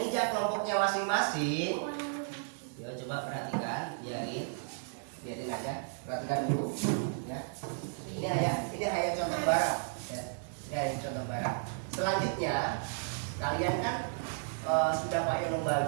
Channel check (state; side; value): silent; left; digital silence